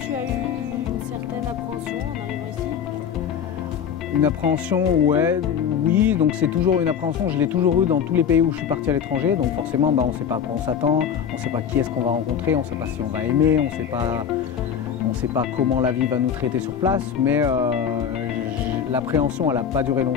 as eu une certaine appréhension en arrivant ici? Une appréhension, oui, donc c'est toujours une appréhension, je l'ai toujours eu dans tous les pays où je suis parti à l'étranger, donc forcément on ne sait pas à quoi on s'attend, on ne sait pas qui est-ce qu'on va rencontrer, on ne sait pas si on va aimer, on ne sait pas comment la vie va nous traiter sur place, mais l'appréhension elle n'a pas duré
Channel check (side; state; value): right; quieter; 7.9 dB